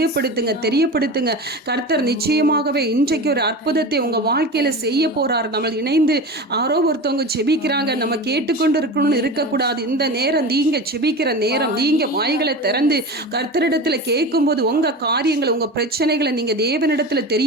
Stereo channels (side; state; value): both; normal; correlation 0.29